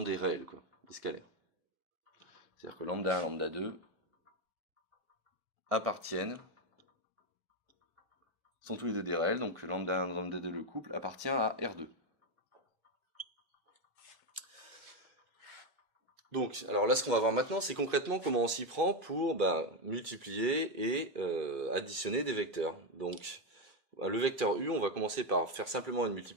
des réels, quoi, des scalaires. C'est-à-dire que lambda 1 et lambda 2 appartiennent, sont tous les deux des réels, donc lambda 1 et lambda 2, le couple, appartient à R2. Donc, alors là, ce qu'on va voir maintenant, c'est concrètement comment on s'y prend pour multiplier et additionner des vecteurs. Donc, le vecteur U, on va commencer par faire simplement une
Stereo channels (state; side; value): normal; both; correlation 0.08